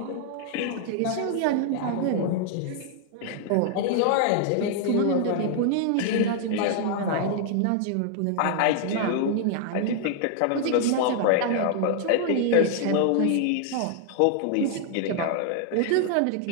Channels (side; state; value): both; different; correlation 0.00